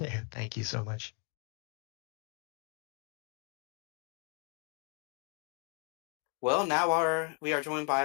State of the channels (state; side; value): quieter; right; 31.1 dB